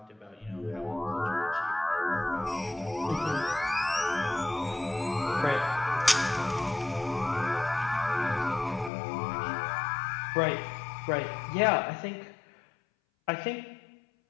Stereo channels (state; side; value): drops out; right; at 8.9 s